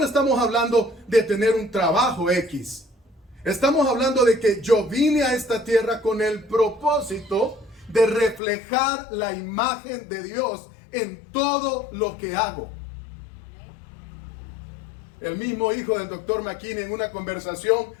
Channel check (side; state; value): right; drops out; at 8.4 s